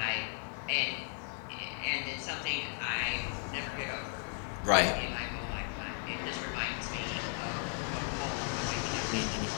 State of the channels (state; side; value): silent; right; 54 dB below the other